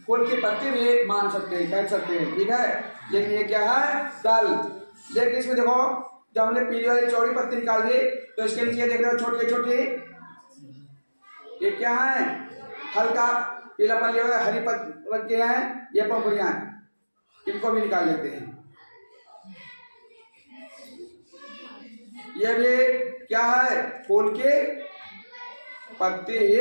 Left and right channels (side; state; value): both; inverted; correlation -1.00